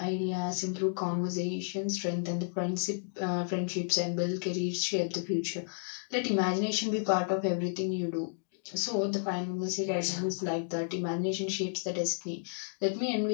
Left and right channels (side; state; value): right; silent; digital silence